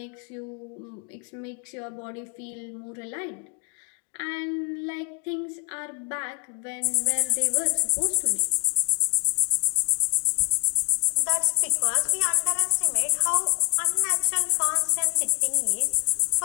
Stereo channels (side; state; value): right; quieter; 33.5 dB